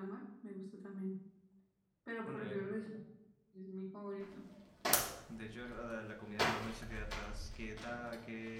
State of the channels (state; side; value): identical; both; correlation 1.00